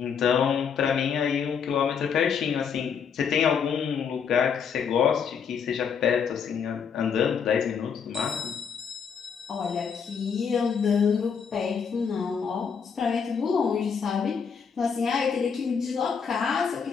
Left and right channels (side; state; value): right; quieter; 6.7 dB